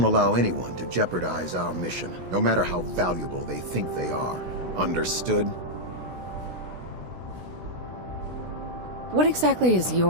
allow anyone to jeopardize our mission, no matter how valuable they think they are. Understood? What exactly is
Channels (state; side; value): late; left; 16 ms